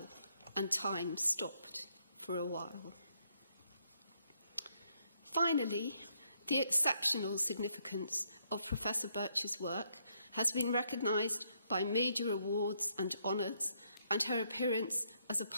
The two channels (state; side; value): inverted; both; correlation -0.74